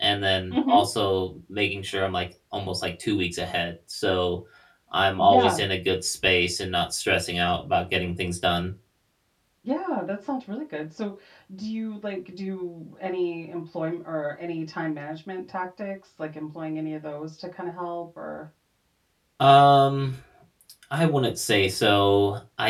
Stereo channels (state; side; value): identical; both; correlation 1.00